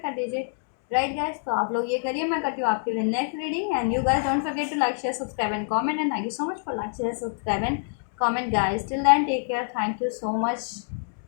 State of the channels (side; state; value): right; silent; digital silence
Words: दीजिए, राइट गाइस। तो आप लोग ये करिए, मैं करती हूँ आपके लिए next reading. And you guys don't forget to like, share, subscribe and comment, and thank you so much for like, share, subscribe and comment guys. Till then, take care. Thank you so much